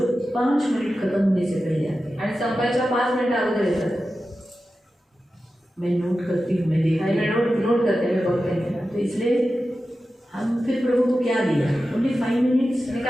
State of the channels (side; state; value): both; normal; correlation 0.93